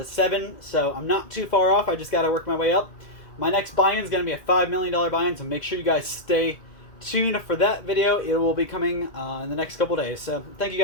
7, so I'm not too far off. I just got to work my way up. My next buy-in is going to be a $5 million buy-in, so make sure you guys stay tuned for that video. It will be coming in the next couple days. So thank you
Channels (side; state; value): right; late; 2.1 ms